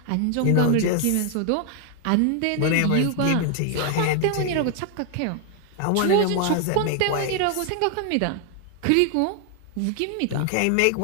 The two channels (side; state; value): both; different; correlation 0.00